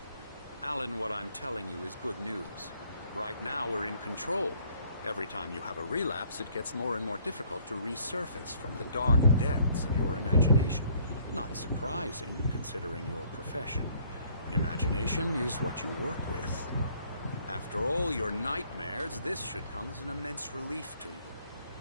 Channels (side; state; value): both; inverted; correlation -0.62